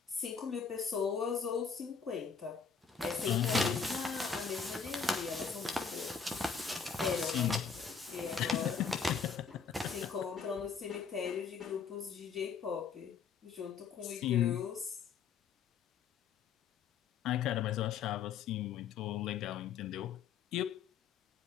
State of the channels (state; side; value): quieter; right; 6.1 dB